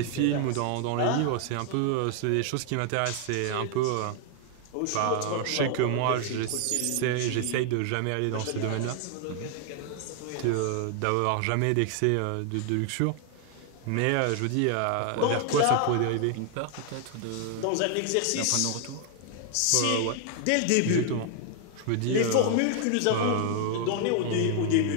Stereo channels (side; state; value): both; different; correlation 0.00